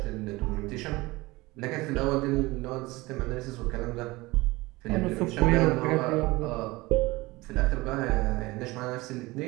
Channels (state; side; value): quieter; left; 21.4 dB